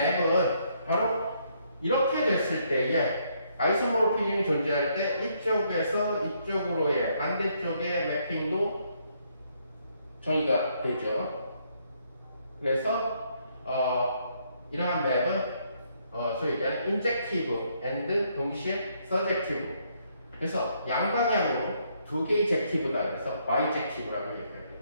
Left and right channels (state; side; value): inverted; both; correlation -0.72